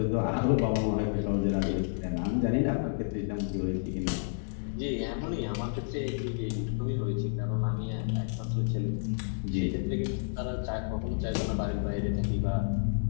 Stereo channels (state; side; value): silent; right; digital silence